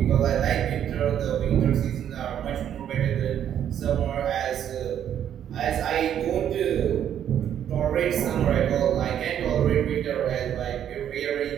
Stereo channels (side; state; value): left; quieter; 9.8 dB